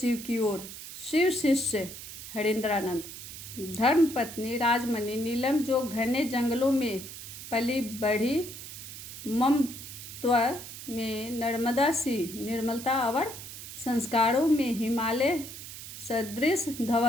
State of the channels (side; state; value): right; noise; hiss, 11 dB below the sound